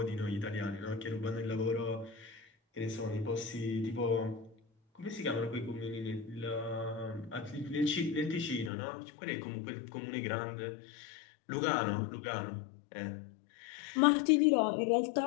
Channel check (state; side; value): drops out; right; at 8.7 s